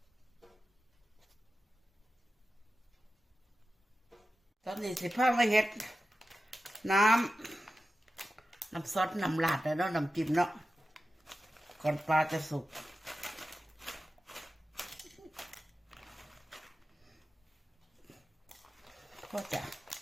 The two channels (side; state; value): both; normal; correlation 0.93